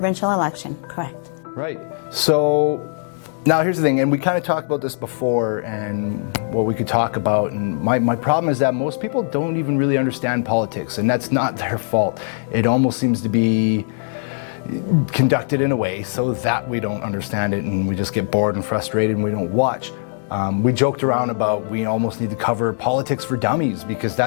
election, correct. Right. So now here's the thing, and we kind of talked about this before and what we could talk about, and my problem is that most people don't even really understand politics, and that's not their fault. It almost seems to be conducted in a way so that we don't understand it and we just get bored and frustrated and we don't watch. We joked around about we almost need to cover politics for dummies because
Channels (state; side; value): silent; right; 63 dB below the other